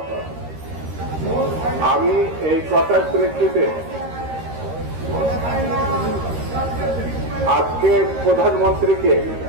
আমি এই কথার প্রেক্ষিতে আজকে প্রধানমন্ত্রীকে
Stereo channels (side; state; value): left; late; 13 ms